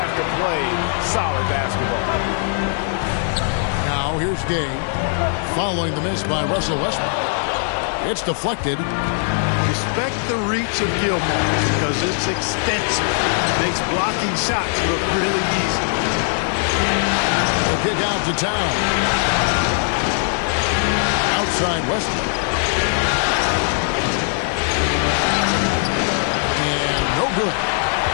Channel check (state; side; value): silent; right; 65 dB below the other